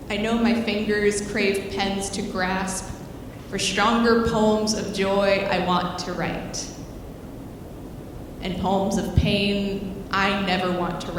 I know my fingers crave pens to grasp for stronger poems of joy I want to write, and poems of pain I never want to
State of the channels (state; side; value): identical; both; correlation 1.00